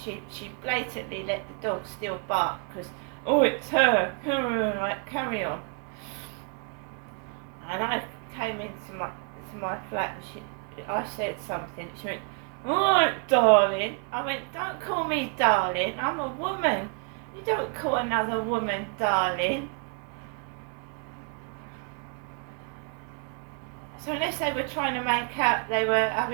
blatantly let the dog still bark, because, oh, it's her, like, carry on. And I came into my flat, and I said something, she went, alright, darling. I went, don't call me darling, I'm a woman. You don't call another woman darling. So unless they were trying to make out they were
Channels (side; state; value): left; quieter; 39.7 dB